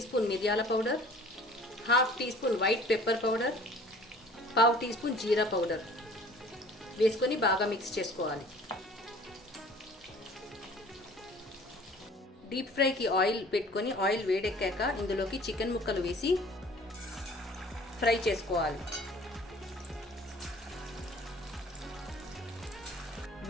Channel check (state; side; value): normal; both; correlation 0.50